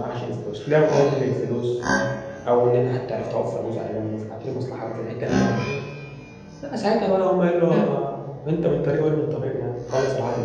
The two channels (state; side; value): identical; both; correlation 1.00